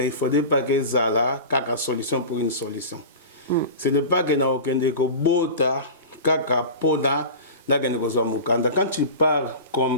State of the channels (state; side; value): inverted; both; correlation -0.32